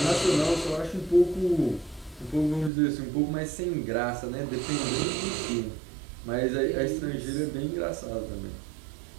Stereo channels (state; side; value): drops out; left; at 2.7 s